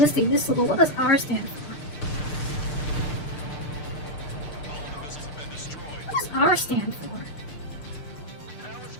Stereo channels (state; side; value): late; right; 6.6 ms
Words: missile, but what does R stand for? What does R stand for? I was